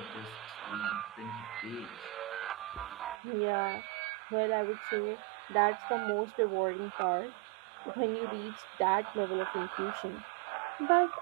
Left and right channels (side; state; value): left; drops out; at 3.2 s